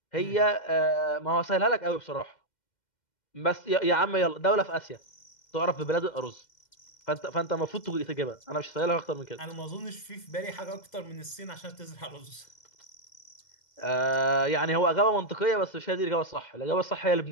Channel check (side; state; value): right; late; 2.1 ms